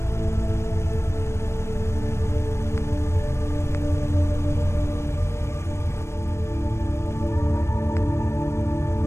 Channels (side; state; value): right; late; 0.13 ms